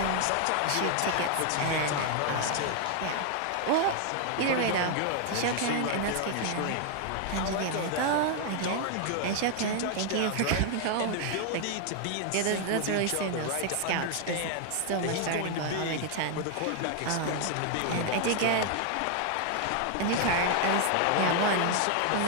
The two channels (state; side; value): different; both; correlation 0.00